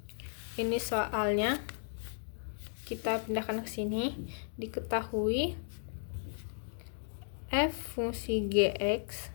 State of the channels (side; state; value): right; silent; digital silence